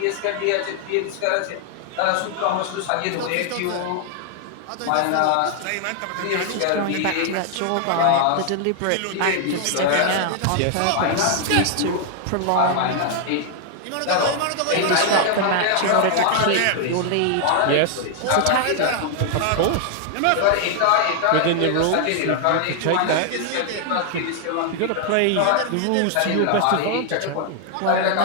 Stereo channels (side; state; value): both; different; correlation 0.00